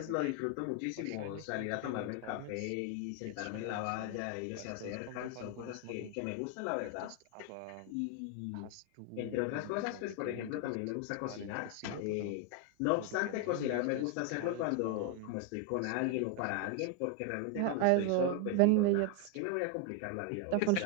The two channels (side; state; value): both; different; correlation 0.01